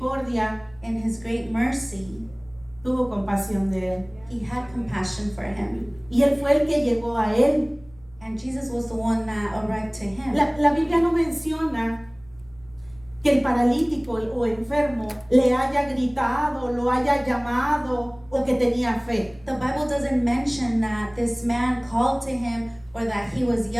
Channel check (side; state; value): right; noise; rumble, 26 dB below the sound